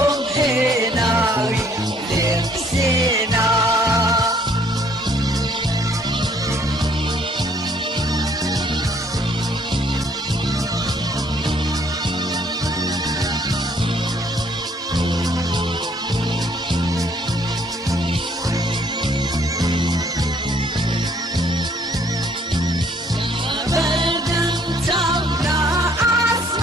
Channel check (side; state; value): both; normal; correlation 0.63